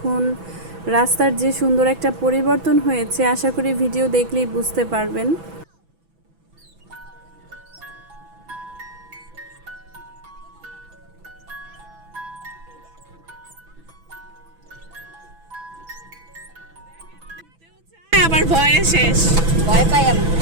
রাস্তার যে সুন্দর একটা পরিবর্তন হয়েছে, আশা করি ভিডিও দেখলেই বুঝতে পারবেন। আবার ভয়ে শেষ, ভয় পাই আমি।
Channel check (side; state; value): left; late; 6.1 ms